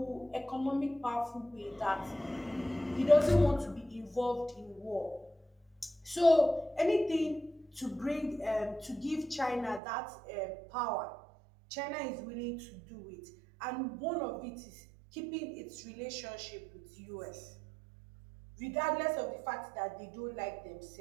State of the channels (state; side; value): drops out; left; at 9.8 s